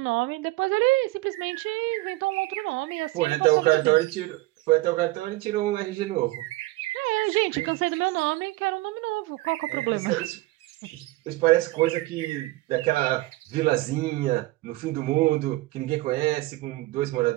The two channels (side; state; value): left; quieter; 19.7 dB